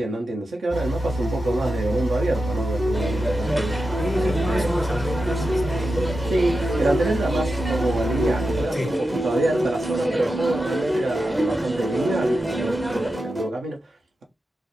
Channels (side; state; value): both; normal; correlation 0.90